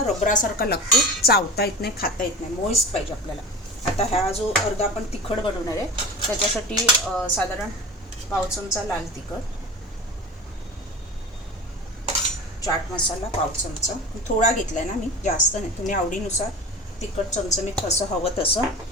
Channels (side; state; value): both; normal; correlation 0.34